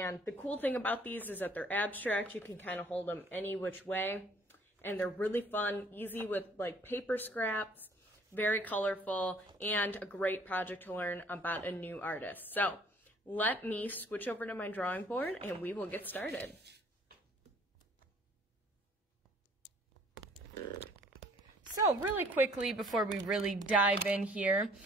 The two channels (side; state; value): both; normal; correlation 0.58